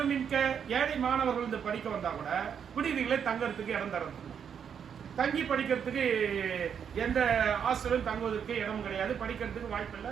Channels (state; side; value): quieter; left; 7.7 dB